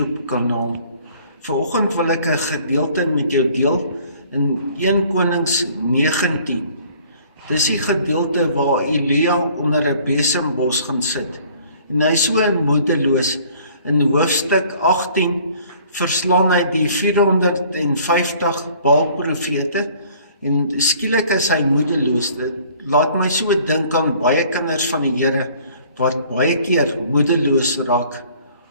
kanaal. Vanoggend wil ek 'n gedeelte met jou deel in 1 Konings 19. Dis die gedeelte waar Elia onder 'n besembos gaan sit. En hy is so moedeloos. In hoofstuk 18 verslaan hy die 450 Baal-profete. En skielik is hy moedeloos. Dit laat my so dink aan baie kinders van die Here wat baie keer moedeloos raak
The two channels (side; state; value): both; inverted; correlation -0.55